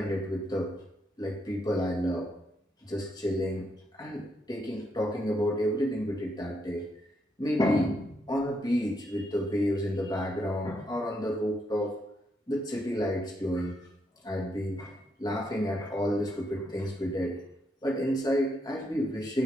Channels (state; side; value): normal; both; correlation 0.78